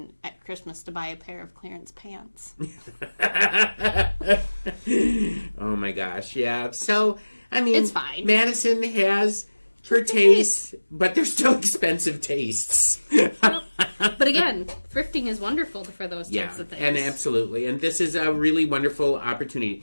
at Christmas to buy a pair of clearance pants. Oh my gosh, yeah. So I mean, it's fine. Madison has her tastes, but they're still expensive tastes. But again, thrifting is wonderful for those types of things. And absolutely. And this is a really wonderful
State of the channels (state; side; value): inverted; both; correlation -1.00